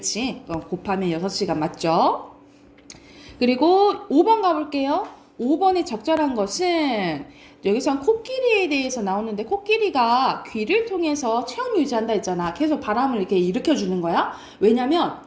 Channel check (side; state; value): both; identical; correlation 1.00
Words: 곱하면 6시간 맞죠? 그리고 5번 가볼게요. 5번에 적절한 것은 여기선 코끼리에 대해서 나오는데 코끼리가 귀를 통해서 체온 유지한다 했잖아. 계속 바람을 이렇게 일으켜주는 거야. 왜냐면